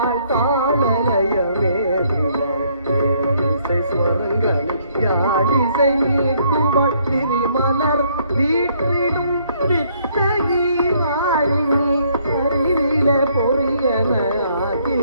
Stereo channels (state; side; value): inverted; both; correlation -0.67